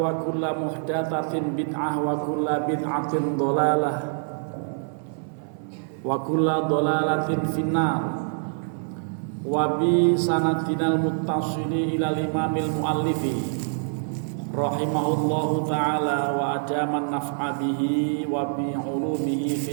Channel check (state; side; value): silent; left; 61 dB below the other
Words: kullu muhdatsatin bid'ah wa kullu bid'atin dhalalah wa kullu dhalalatin finnar wa bi sanadinal muttasili ila imamil muallifi rahimahullahu ta'ala wa adaman naf'a bihi wa bi ulumihi